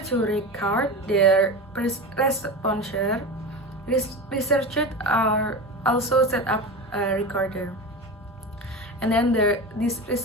to record their responses, researchers are also set up a recorder. And then this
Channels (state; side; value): normal; both; correlation 0.25